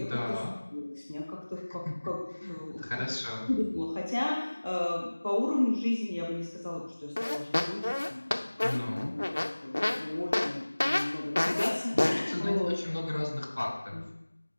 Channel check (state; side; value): inverted; both; correlation -1.00